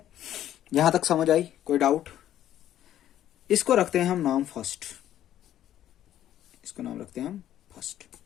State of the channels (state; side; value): quieter; right; 11.9 dB